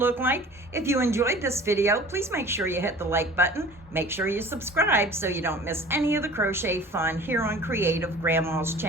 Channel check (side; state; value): both; normal; correlation 0.44